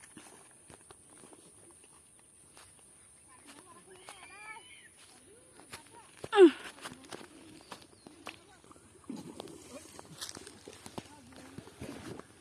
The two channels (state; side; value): identical; both; correlation 1.00